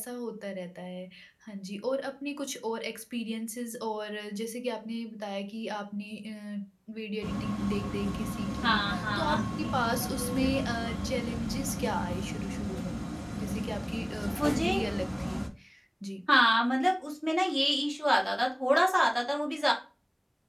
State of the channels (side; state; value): both; identical; correlation 1.00